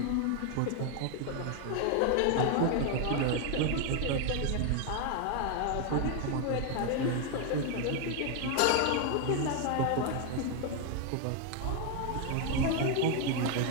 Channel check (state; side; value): different; both; correlation 0.01